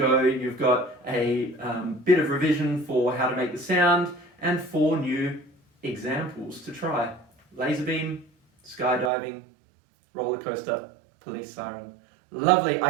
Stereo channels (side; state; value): left; drops out; at 9.1 s